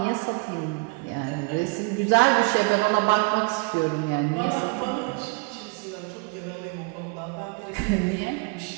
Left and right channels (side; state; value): left; quieter; 29.5 dB